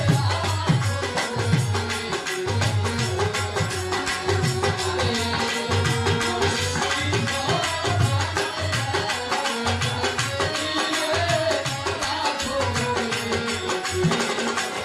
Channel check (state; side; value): identical; both; correlation 1.00